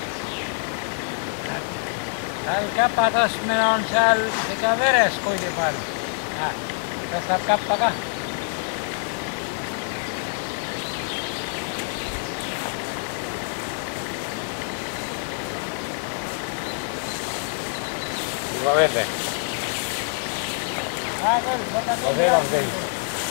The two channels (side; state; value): right; silent; 60 dB below the other